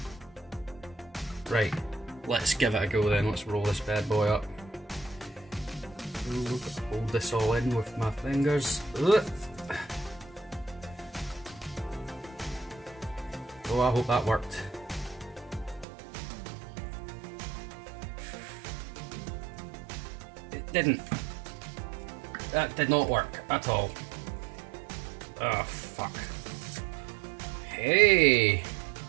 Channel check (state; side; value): drops out; left; at 15.9 s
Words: Right, let's give it a go then, let's roll this bad boy up. Ooh, hold this all in with my fingers. Ugh. Oh, I hope that worked. It didn't. That did not work at all. Oh, fuck. Hey!